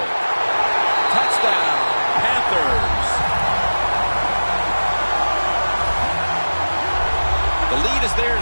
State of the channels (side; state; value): both; inverted; correlation -1.00